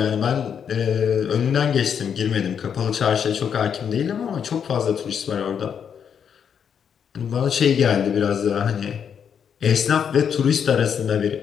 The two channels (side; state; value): right; quieter; 7.7 dB